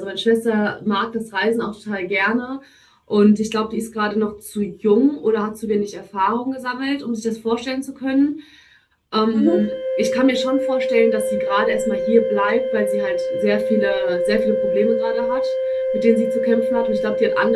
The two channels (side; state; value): both; identical; correlation 1.00